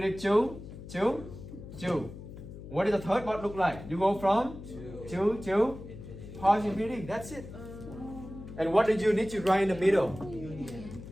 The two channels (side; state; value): left; noise; hum, 13 dB below the sound